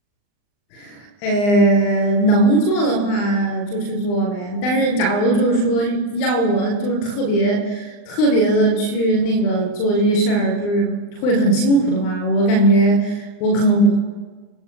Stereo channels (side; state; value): right; late; 39 ms